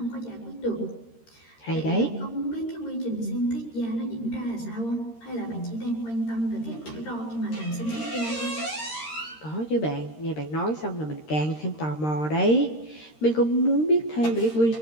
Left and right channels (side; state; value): right; late; 13 ms